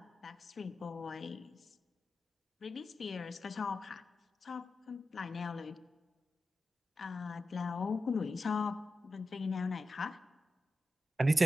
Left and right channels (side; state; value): both; normal; correlation 0.91